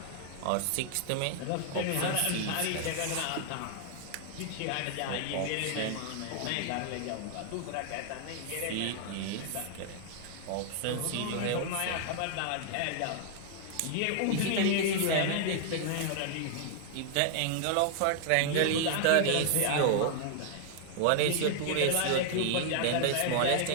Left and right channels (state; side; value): different; both; correlation 0.00